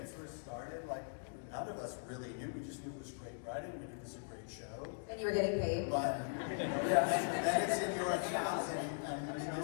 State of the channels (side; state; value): right; silent; digital silence